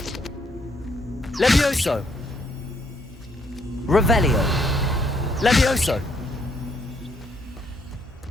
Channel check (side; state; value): both; normal; correlation 0.71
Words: Levioso. Revelio. Levioso.